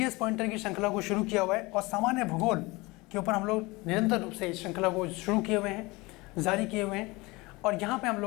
पॉइंटर की श्रृंखला को शुरू किया हुआ है और सामान्य भूगोल के ऊपर हम लोग निरंतर रूप से इस श्रृंखला को शुरू किए हुए हैं, जारी किए हुए हैं। और यहाँ पर हम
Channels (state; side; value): quieter; right; 23.3 dB